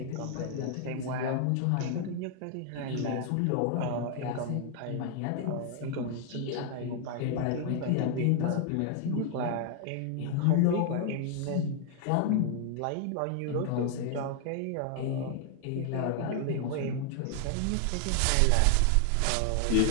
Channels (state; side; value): different; both; correlation 0.00